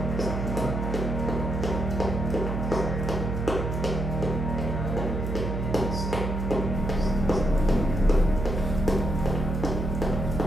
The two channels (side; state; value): right; noise; hum, 2 dB below the sound